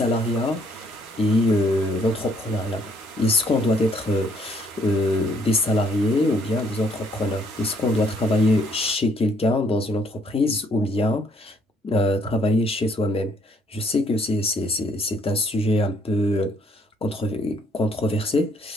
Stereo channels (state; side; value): normal; both; correlation 0.66